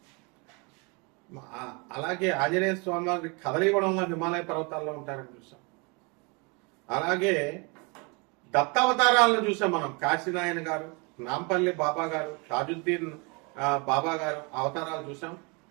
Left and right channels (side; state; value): left; quieter; 30.5 dB